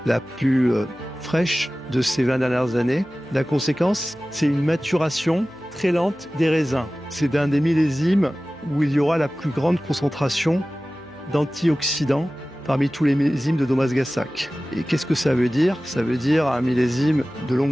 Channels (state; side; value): noise; left; hum, 29 dB below the sound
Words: la plus fraîche de ces 20 dernières années. La conséquence, c'est une maturation très lente des raisins. C'est un des millésimes où il y aura la plus grande concentration d'antioxydants parmi tous les millésimes de Domagassac. Et qu'est-ce que ça veut dire? Ça veut dire un millésime de